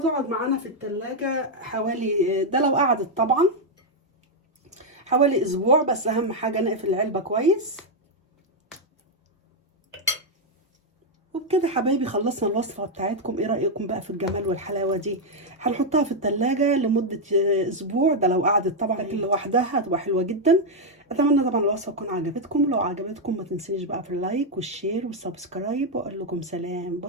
معانا في التلاجة حوالي، ده لو قعدت طبعا حوالي اسبوع، بس اهم حاجه نقفل العلبه كويس. وبكده حبايبي خلصنا الوصفه بتاعتكم. ايه رايكم بقى في الجمال والحلاوه دي؟ هنحطها في التلاجة لمده اسبوع، ده لو قعدت طبعا، لكن لوحدها هتبقى حلوه جدا. اتمنى طبعا الوصفه تكون عجبتكم، لو عجبتكم ما تنسيش بقى في اللايك والشير والسبسكرايب، واقول لكم سلام،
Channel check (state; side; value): normal; both; correlation 0.00